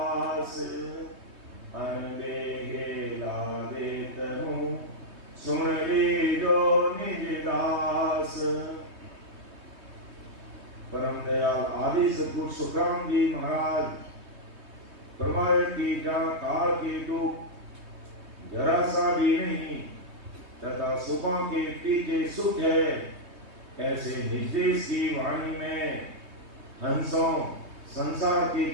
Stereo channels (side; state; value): left; late; 3.2 ms